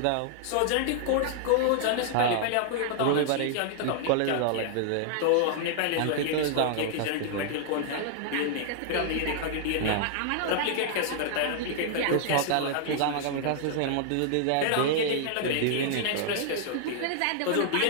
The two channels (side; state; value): both; different; correlation -0.01